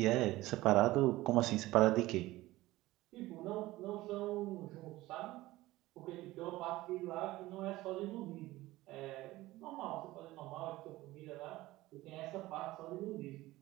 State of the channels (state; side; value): quieter; left; 17.8 dB